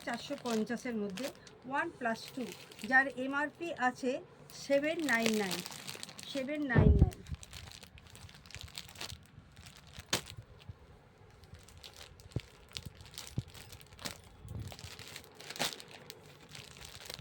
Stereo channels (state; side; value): identical; both; correlation 1.00